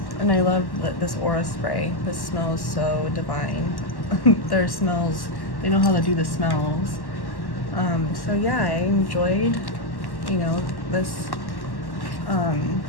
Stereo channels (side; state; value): right; late; 1.1 ms